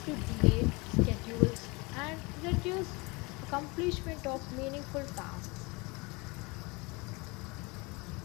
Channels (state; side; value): quieter; right; 26.6 dB